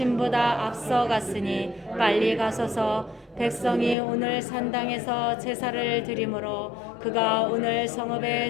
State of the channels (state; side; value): drops out; right; at 4.0 s